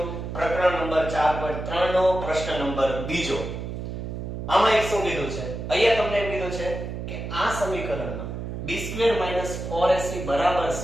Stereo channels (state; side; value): noise; right; hum, 6 dB below the sound